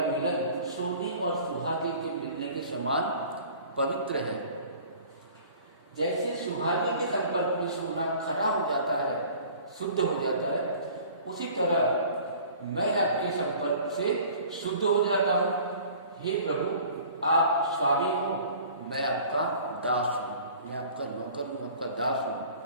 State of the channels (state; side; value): inverted; both; correlation -0.47